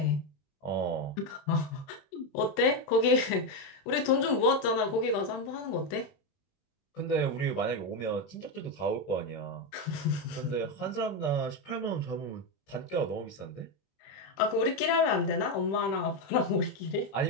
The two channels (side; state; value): right; late; 20 ms